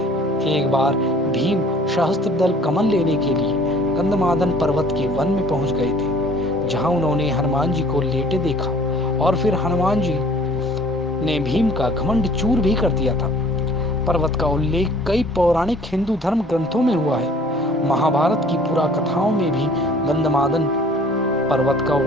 एक बार भीम सहस्त्रदल कमल लेने के लिए गंधमादन पर्वत के वन में पहुंच गए थे, जहां उन्होंने हनुमान जी को लेटे देखा और फिर हनुमान जी ने भीम का घमंड चूर भी कर दिया था। पर्वत का उल्लेख कई पौराणिक हिंदू धर्म ग्रंथों में हुआ है। महाभारत की पुरा कथाओं में भी गंधमादन पर्वत का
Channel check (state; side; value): normal; both; correlation 0.52